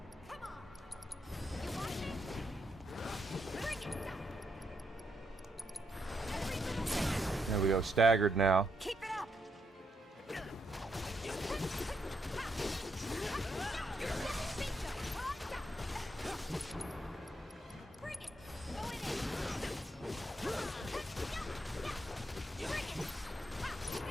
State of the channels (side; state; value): both; normal; correlation 0.79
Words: There we go, staggered now. Keep it up. Bring it. Going in. Bring it.